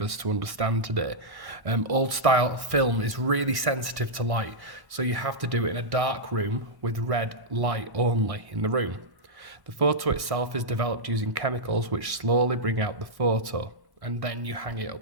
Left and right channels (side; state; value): left; late; 1.1 ms